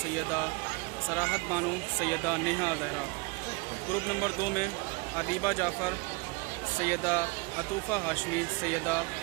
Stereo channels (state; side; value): quieter; left; 28.2 dB